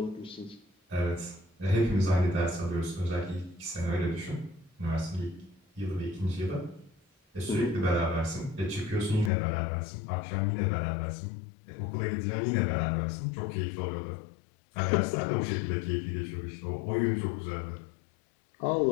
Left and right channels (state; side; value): drops out; right; at 9.3 s